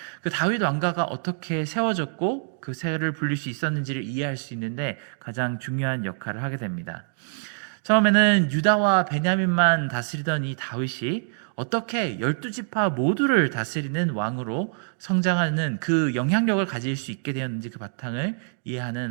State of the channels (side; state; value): left; silent; digital silence